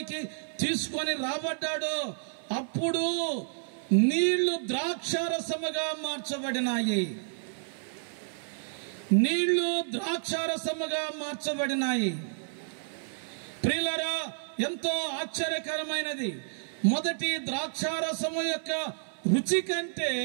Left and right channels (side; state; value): left; silent; 58 dB below the other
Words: తీసుకొని రాబడ్డాడో, అప్పుడు నీళ్లు ద్రాక్షారసముగా మార్చబడినాయి. నీళ్లు ద్రాక్షారసముగా మార్చబడినాయి. ప్రియులారా, ఎంతో ఆశ్చర్యకరమైనది. మొదటి ద్రాక్షారసము యొక్క రుచి కంటే